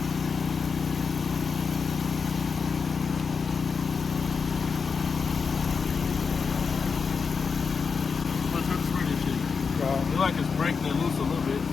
It's like it's breaking it loose a little bit, you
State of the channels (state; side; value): quieter; right; 5.4 dB